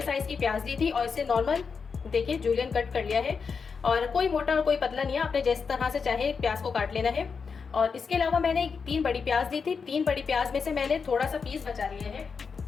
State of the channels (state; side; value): quieter; right; 5.5 dB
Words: साइज़ की प्याज ली थी और इसे नॉर्मल देखिए जूलियन कट कर लिया है। और कोई मोटा और कोई पतला नहीं है, आपने जिस तरह से चाहे प्याज को काट लेना है। और इसके अलावा मैंने 3 बड़ी प्याज ली थी। 3 बड़ी प्याज में से मैंने थोड़ा सा पीस बचा लिया है,